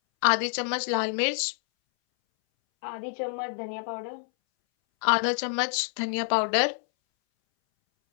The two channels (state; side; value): silent; right; 60 dB below the other